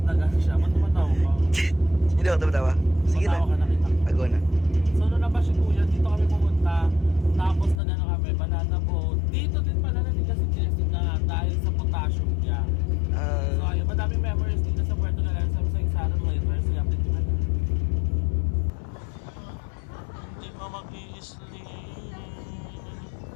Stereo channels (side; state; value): right; drops out; at 7.8 s